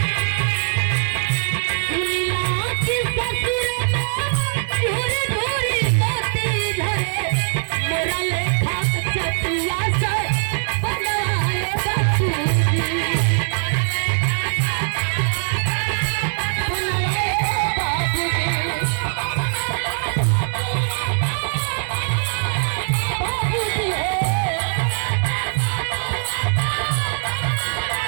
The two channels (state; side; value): silent; left; digital silence